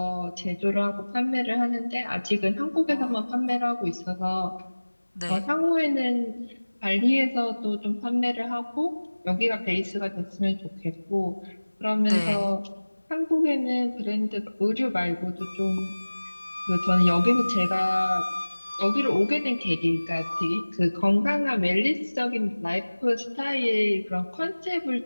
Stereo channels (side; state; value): both; inverted; correlation -1.00